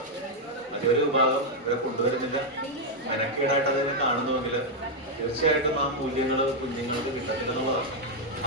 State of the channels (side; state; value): both; normal; correlation 0.00